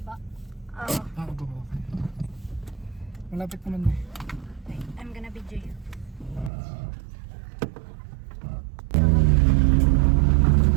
Ah, Ah, baba. Malapit naman na eh. wait, I'm gonna video you.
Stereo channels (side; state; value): left; drops out; at 6.5 s